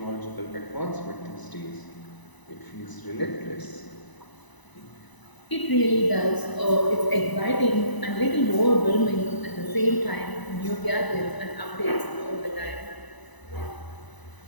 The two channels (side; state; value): right; late; 1.0 ms